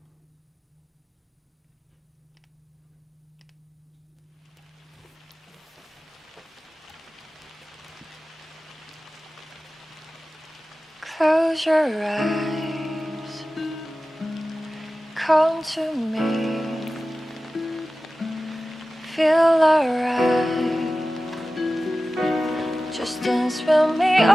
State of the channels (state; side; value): normal; both; correlation 0.95